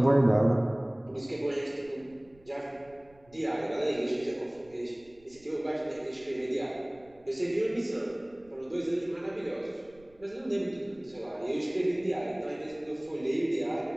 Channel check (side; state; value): right; noise; rumble, 28 dB below the sound